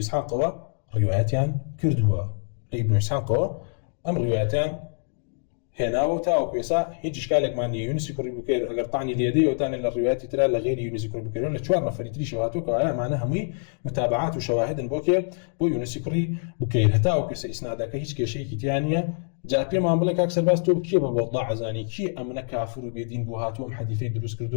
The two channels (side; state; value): right; silent; digital silence